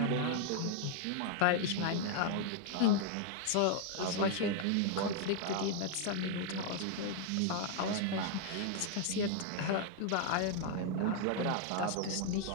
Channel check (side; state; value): both; different; correlation 0.00